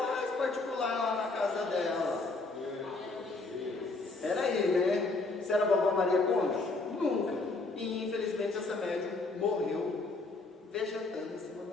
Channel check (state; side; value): quieter; right; 3.4 dB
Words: particular lá na casa dela. Era aí, né? Você era a vovó Maria Conga? Nunca. E infelizmente essa médium morreu vegetando em cima de